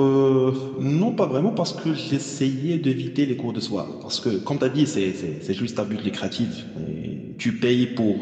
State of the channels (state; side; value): identical; both; correlation 1.00